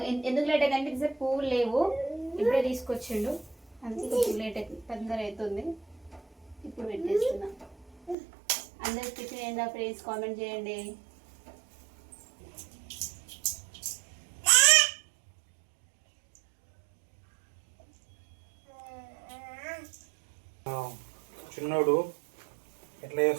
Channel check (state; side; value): drops out; left; at 8.2 s